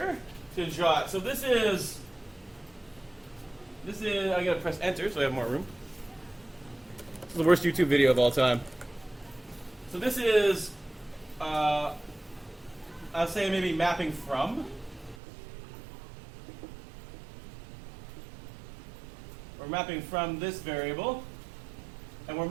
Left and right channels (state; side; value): drops out; left; at 15.2 s